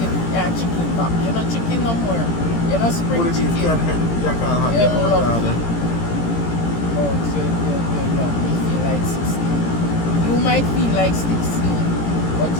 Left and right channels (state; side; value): late; right; 17 ms